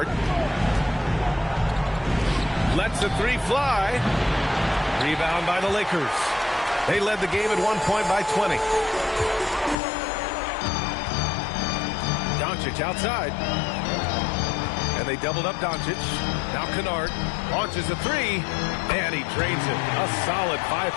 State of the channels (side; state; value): right; drops out; at 9.8 s